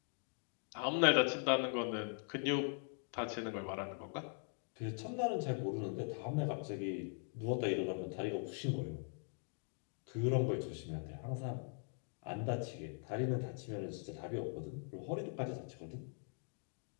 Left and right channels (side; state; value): right; silent; 50 dB below the other